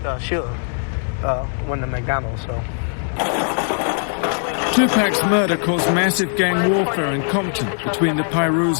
Suge when the McDonald's, so. Tupac's murder caused massive gang warfare in Compton between the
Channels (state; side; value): silent; right; 66 dB below the other